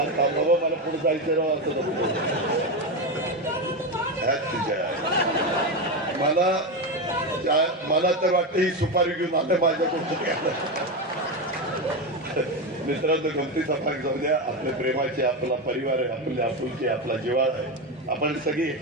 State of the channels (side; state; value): both; normal; correlation 0.14